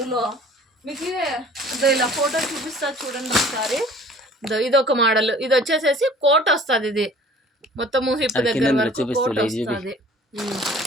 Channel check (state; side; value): normal; both; correlation 0.49